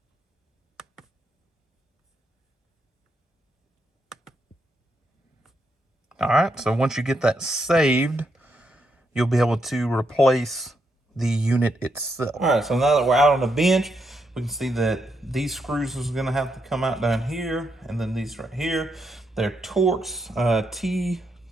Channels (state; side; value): normal; both; correlation 0.80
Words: All right, so once you get that saved, you'll be able to replace the unit itself. All right, so now that we're out on the bench, we can see that these screws is gonna have to come out down here, and then these right here. They're Torx